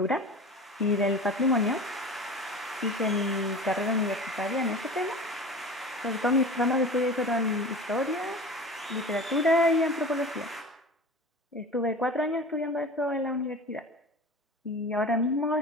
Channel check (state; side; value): normal; both; correlation 0.35